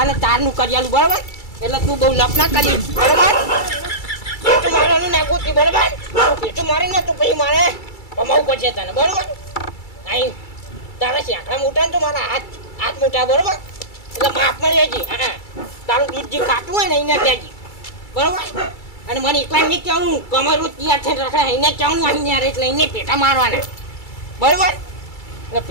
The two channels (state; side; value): late; right; 2.3 ms